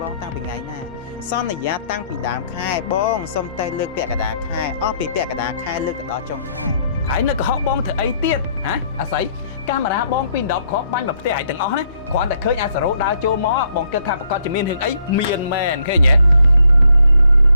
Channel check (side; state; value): both; inverted; correlation -0.69